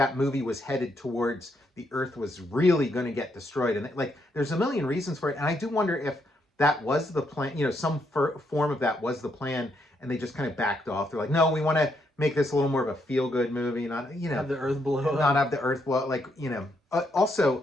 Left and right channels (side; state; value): both; normal; correlation 0.76